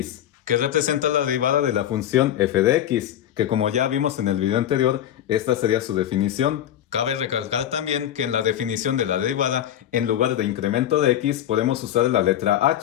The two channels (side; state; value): right; quieter; 11.2 dB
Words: que representa la derivada de la función f de x, que como ya vimos en el video anterior, esta sería su definición. Cabe recalcar también que en la definición de la derivada, en lugar de incremento de x, podemos usar la letra